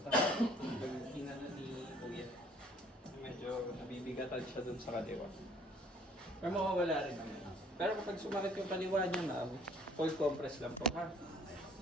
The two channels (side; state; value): both; normal; correlation 0.57